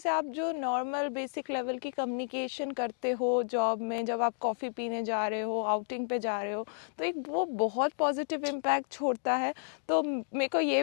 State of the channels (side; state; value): right; silent; digital silence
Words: आप जो नॉर्मल बेसिक लेवल की कम्युनिकेशन करते हो जॉब में, जब आप कॉफ़ी पीने जा रहे हो, आउटिंग पे जा रहे हो, तो एक वो बहुत पॉजिटिव इम्पैक्ट छोड़ता है। तो मेरे को ये